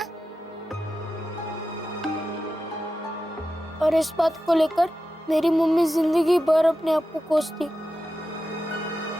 और इस बात को लेकर मेरी मम्मी जिंदगी भर अपने आप को कोसती।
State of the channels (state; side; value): normal; both; correlation 0.92